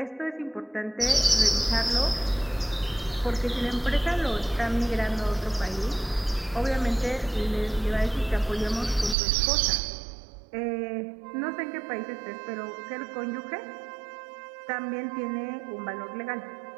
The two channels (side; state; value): left; drops out; at 9.2 s